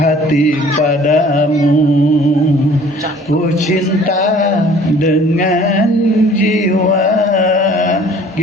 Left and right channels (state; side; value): normal; both; correlation 0.52